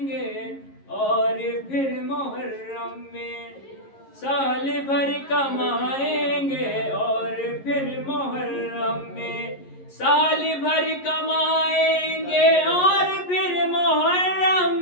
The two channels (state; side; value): late; right; 11 ms